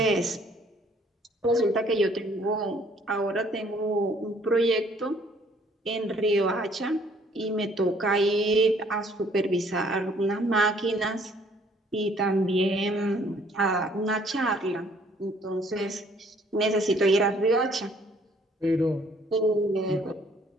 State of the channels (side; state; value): both; normal; correlation 0.61